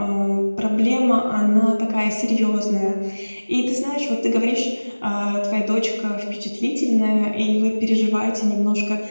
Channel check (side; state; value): both; inverted; correlation -1.00